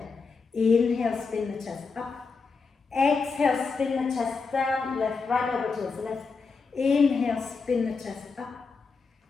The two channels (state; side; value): quieter; right; 4.7 dB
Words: Inhale, spin the chest up. Exhale, spin the chest down, left, right over towards the left. Inhale, spin the chest up.